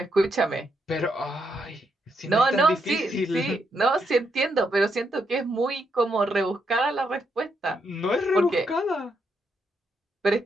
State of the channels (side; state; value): both; normal; correlation 0.79